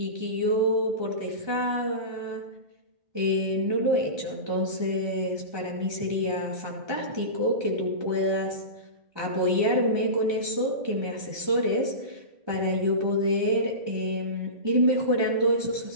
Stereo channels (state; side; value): late; left; 1.2 ms